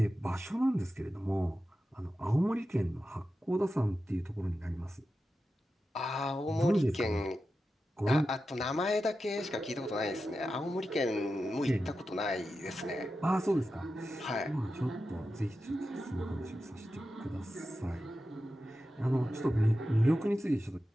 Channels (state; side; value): normal; both; correlation 0.91